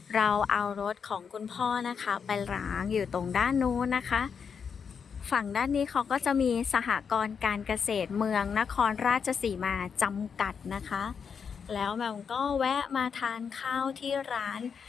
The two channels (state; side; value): quieter; right; 6.5 dB